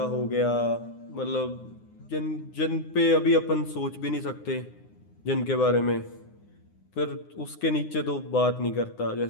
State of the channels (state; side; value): late; right; 9.7 ms